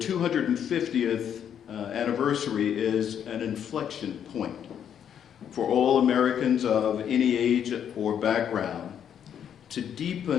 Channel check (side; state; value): right; quieter; 8.9 dB